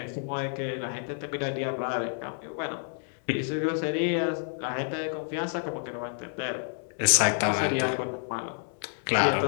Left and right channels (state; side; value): silent; right; 58 dB below the other